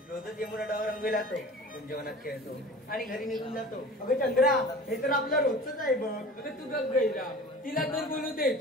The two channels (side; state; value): both; normal; correlation 0.39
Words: रोजच यमुना डावर रंगवे जातो, जेवणात खेळतो आणि घरी निघून जातो. अगं चंद्रा, हे तर आपलं रोजच आहे बघ. अगं तू गप गैरा, तिला तर बोलू दे.